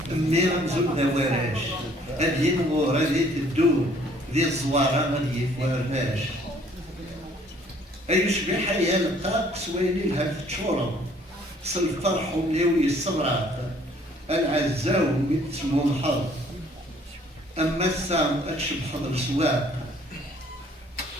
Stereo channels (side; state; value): both; normal; correlation 0.59